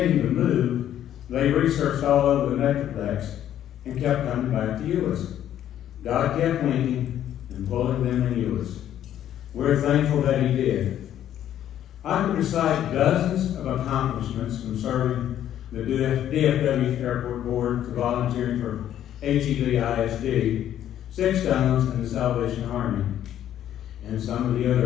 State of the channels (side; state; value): right; quieter; 11.1 dB